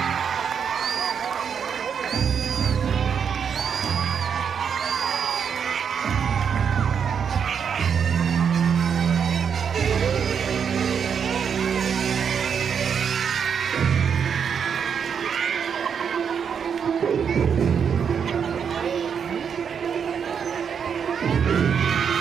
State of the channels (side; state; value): left; quieter; 7.1 dB